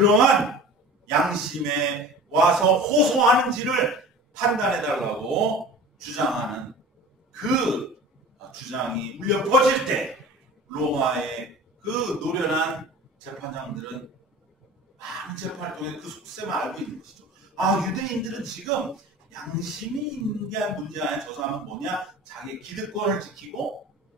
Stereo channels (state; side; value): normal; both; correlation 0.38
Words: 양심에 와서 호소하는지를 판단해달라고 주장하는 그 주장이 울려 퍼질 때 로마의 그 노련한 재판장들은 많은 재판을 통해 그 속셈을 알고 있는 것이죠. 아, 유대인들은 지금 양심이 있는 게 문제가 아니라 저 사람은 뭐냐? 자기의 기득권을 지키고